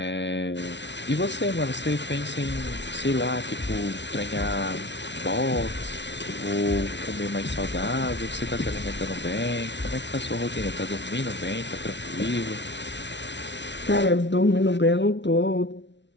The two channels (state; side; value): late; right; 0.51 ms